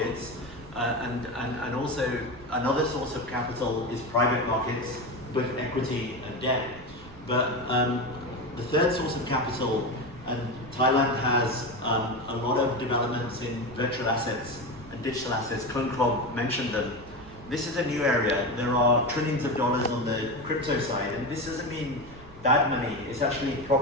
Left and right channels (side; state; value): right; noise; rumble, 19 dB below the sound